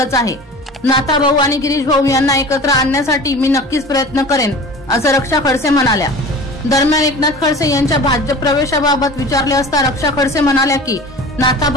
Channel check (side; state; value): both; normal; correlation 0.38